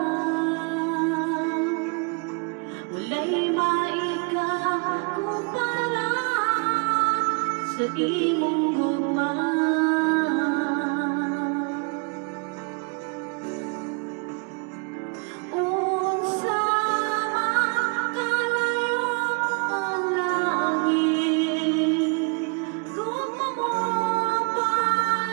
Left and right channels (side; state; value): left; quieter; 34.6 dB